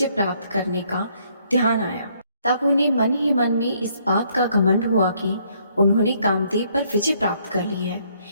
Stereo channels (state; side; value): inverted; both; correlation -0.68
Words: प्राप्त करने का ध्यान आया। तब उन्हें मन ही मन में इस बात का घमंड हुआ कि उन्होंने कामदेव पर विजय प्राप्त कर ली है।